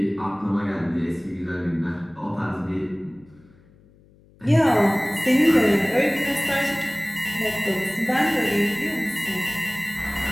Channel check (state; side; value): noise; left; hum, 29 dB below the sound